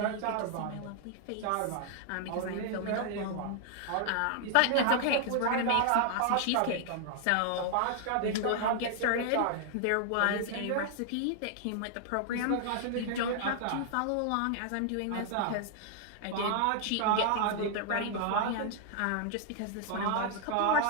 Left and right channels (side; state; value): both; different; correlation 0.00